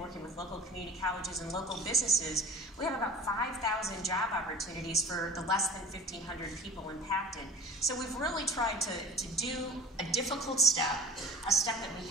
with local community colleges and local businesses, we have about 5,000 job opportunities for the less than 1,500 people impacted. So we've really tried to do a difficult step, a step that we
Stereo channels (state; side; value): normal; both; correlation 0.38